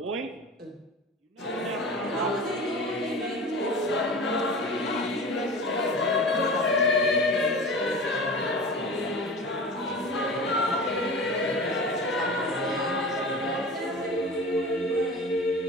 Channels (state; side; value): normal; both; correlation 0.35